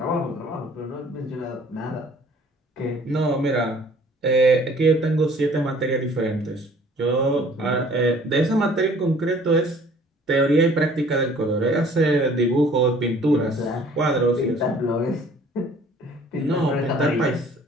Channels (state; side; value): normal; both; correlation 0.54